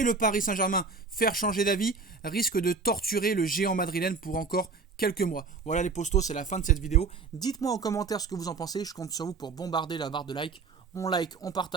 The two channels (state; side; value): quieter; left; 4.6 dB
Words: le Paris Saint-Germain faire changer d'avis risque de torturer le géant madrilène pour encore quelques mois. Voilà les postos, c'est la fin de cette vidéo. Dites-moi en commentaire ce que vous en pensez, je compte sur vous pour bombarder la barre de like. On like, on